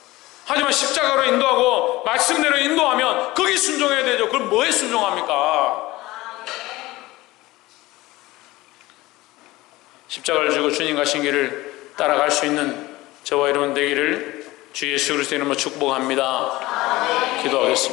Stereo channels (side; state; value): right; quieter; 19.1 dB